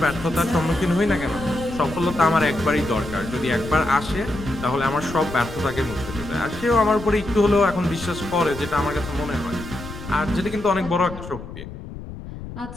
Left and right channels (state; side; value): noise; left; rumble, 12 dB below the sound